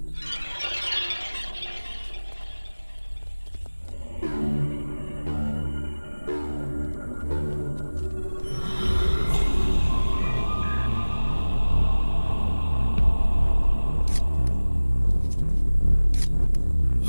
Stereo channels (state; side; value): inverted; both; correlation -1.00